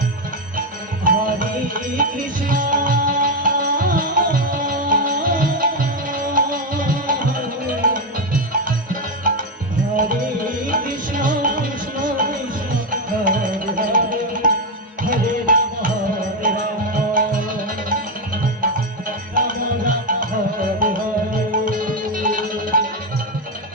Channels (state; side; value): normal; both; correlation 0.07